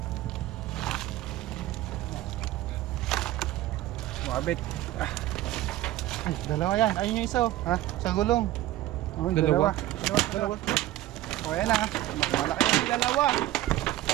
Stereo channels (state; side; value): quieter; left; 15.2 dB